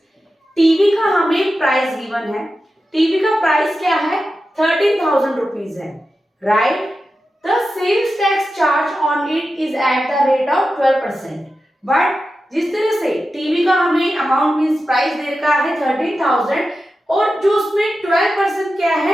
TV का हमें प्राइस गिवन है। टीवी का प्राइस क्या है? 13,000 रुपीज है, right. The sales tax charge on it is at the rate of 12%. But जिस तरह से टीवी का हमें अमाउंट मींस प्राइस दे रखा है 13,000 और जो उसमें 12% क्या है,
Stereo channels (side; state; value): both; normal; correlation 0.92